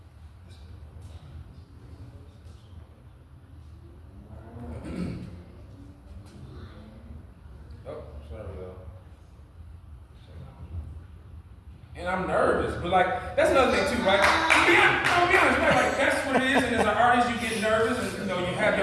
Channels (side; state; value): both; identical; correlation 1.00